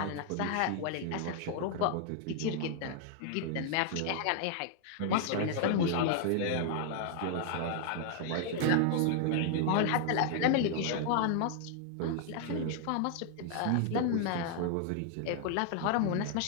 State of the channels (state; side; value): different; both; correlation 0.00